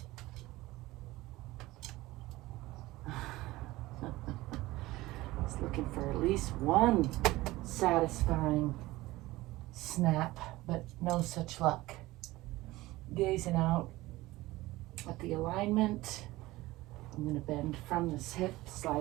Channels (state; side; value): quieter; left; 18.7 dB